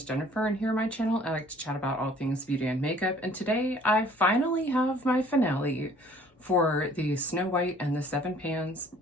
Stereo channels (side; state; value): both; normal; correlation 0.55